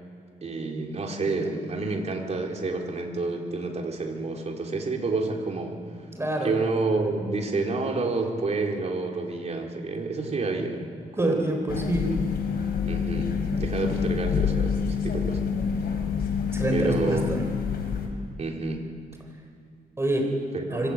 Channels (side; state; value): both; normal; correlation 0.67